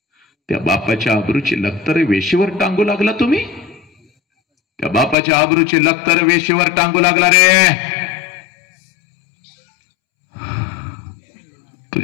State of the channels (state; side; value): drops out; right; at 5.2 s